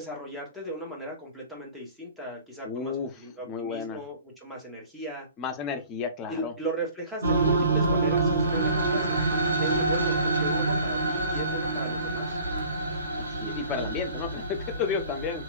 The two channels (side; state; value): both; inverted; correlation -0.47